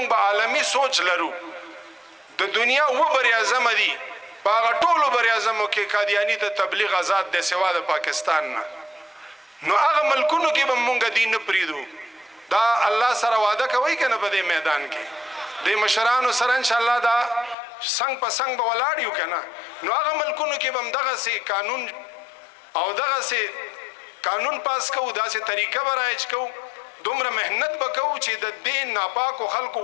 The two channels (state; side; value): drops out; right; at 17.6 s